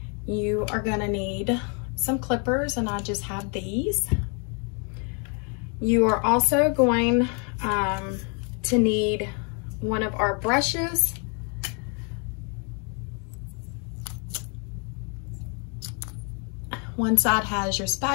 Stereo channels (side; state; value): right; quieter; 37.2 dB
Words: You are going to need some clippers, and I just have these. You are also going to need one of our brushes. One side has your